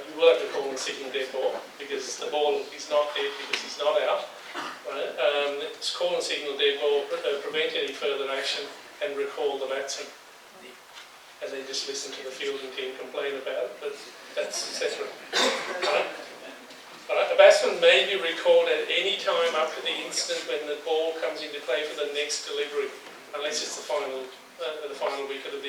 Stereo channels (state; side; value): identical; both; correlation 1.00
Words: will have to call and signal dead ball because the ball is not dead because he's not out. Right? It's call and signal dead ball, prevent any further action and recall the batsman. And then just listen to the fielding team complain about it, but that's separate. Right? Right. A batsman may be recalled at any time up to the instant when the ball comes into play for the next delivery, unless it's the final wicket of the